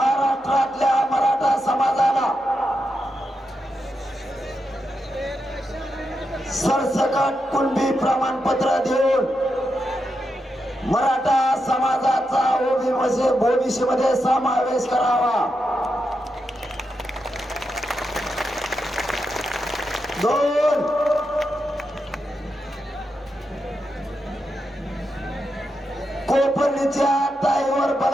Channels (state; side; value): normal; both; correlation 0.86